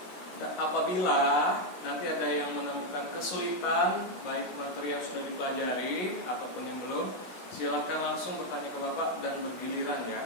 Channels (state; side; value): late; right; 16 ms